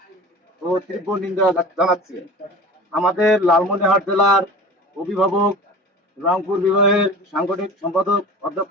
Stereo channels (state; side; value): normal; both; correlation 0.37